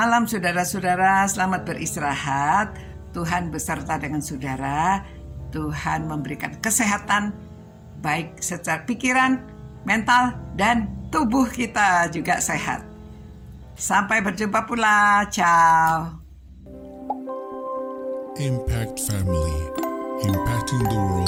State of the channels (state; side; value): identical; both; correlation 1.00